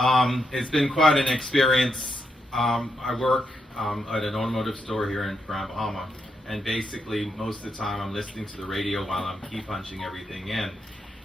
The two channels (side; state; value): both; normal; correlation 0.81